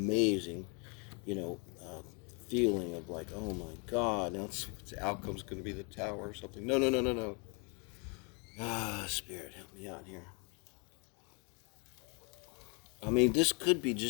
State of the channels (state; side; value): quieter; right; 33.8 dB